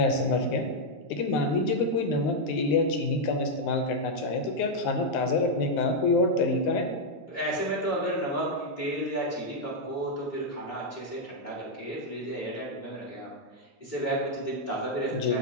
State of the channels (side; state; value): both; normal; correlation -0.02